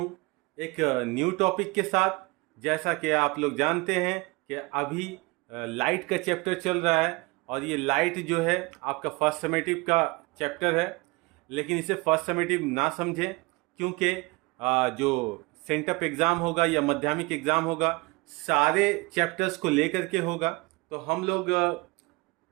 एक न्यू टॉपिक के साथ। जैसा कि आप लोग जानते हैं कि अभी लाइट का चैप्टर चल रहा है और ये लाइट जो है आपका फर्स्ट समेटिव का चैप्टर है। लेकिन इसे फर्स्ट समेटिव ना समझें, क्योंकि जो सेंटअप एग्ज़ाम होगा या माध्यमिक एग्ज़ाम होगा सारे चैप्टर्स को लेकर के होगा। तो हम लोग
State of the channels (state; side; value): quieter; left; 25.1 dB